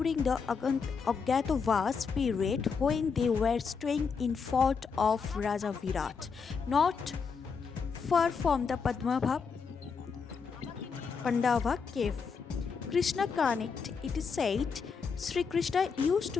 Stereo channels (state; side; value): quieter; right; 5.6 dB